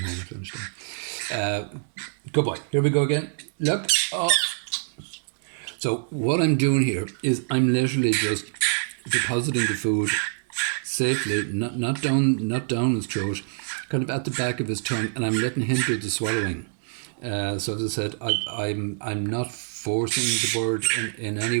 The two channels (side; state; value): left; silent; 61 dB below the other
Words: home at lunchtime. Good boy. Here we go again. Look. Oh. So what I'm doing here is I'm literally just depositing the food safely, not down his throat, kind of at the back of his tongue, and I'm letting him do the swallowing. So as I said, I'm not forcing the bird in